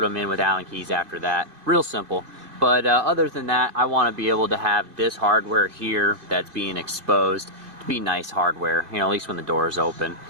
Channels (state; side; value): late; left; 2.5 ms